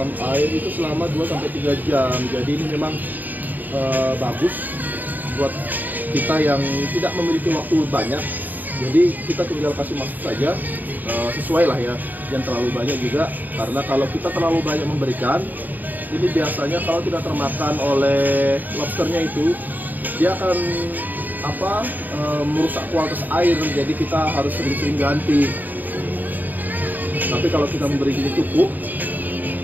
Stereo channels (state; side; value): late; left; 0.086 ms